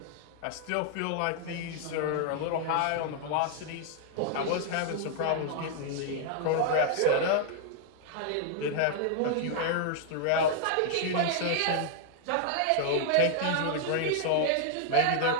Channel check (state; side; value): different; both; correlation 0.00